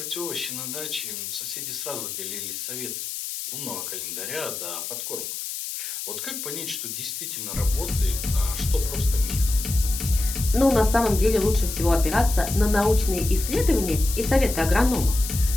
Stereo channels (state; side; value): noise; left; hiss, 6 dB below the sound